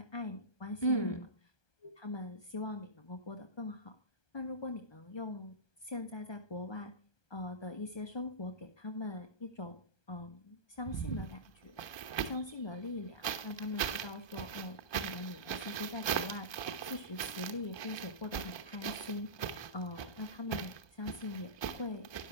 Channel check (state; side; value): late; right; 1.2 ms